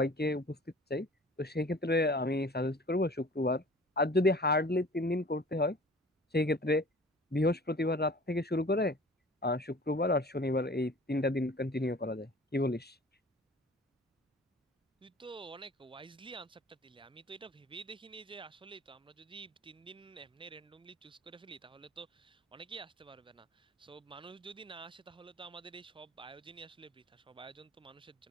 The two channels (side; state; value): both; normal; correlation 0.46